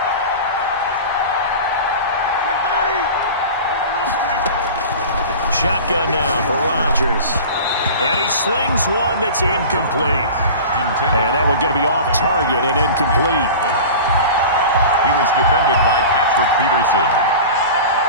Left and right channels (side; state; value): both; inverted; correlation -0.35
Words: Shotgun now for Rodgers. And he slings one that's incomplete. And that one going to be off target and incomplete. He was defended by Patrick Peterson.